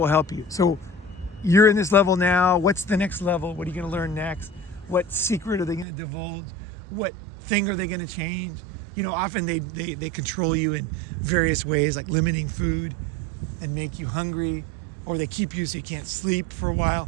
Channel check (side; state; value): left; drops out; at 5.9 s